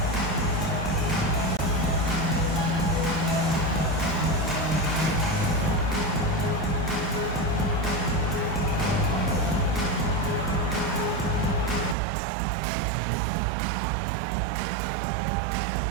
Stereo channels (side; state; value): left; drops out; at 12.0 s